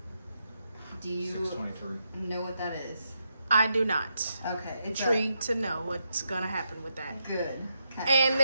Do you 623. know what that is? I do not. Okay. It's Intrigued to know what's gonna happen with that. good. Okay. And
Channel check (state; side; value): inverted; both; correlation -0.83